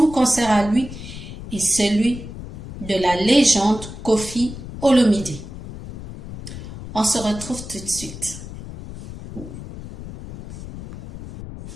concert à lui et celui de la légende Koffi Olomide. On se retrouve tout de suite.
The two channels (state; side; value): noise; left; rumble, 12 dB below the sound